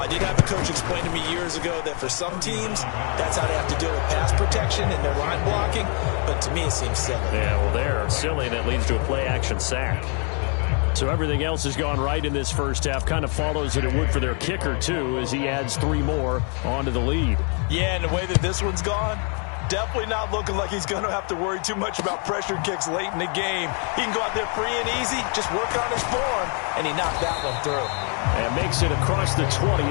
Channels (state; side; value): quieter; right; 38.9 dB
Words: I did have a coach explain to me years ago that for some teams, that's how they have to deal with pass protection and their line blocking. But to me, it seems silly. Yeah, well, they're silly, and it leads to a play-action sack. So everything else has gone right in this first half. Kind of follows that it would for their kicker, too, as he adds 3 more onto the lead. Yeah, and the way that this one's gone, definitely not looking like he's going to have to worry too much about pressure kicks late in the game. He can go out there free and easy, just work on his form, and he knocked that one through. And makes it across the 20